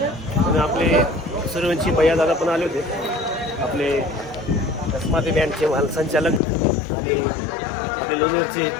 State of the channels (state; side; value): drops out; right; at 6.4 s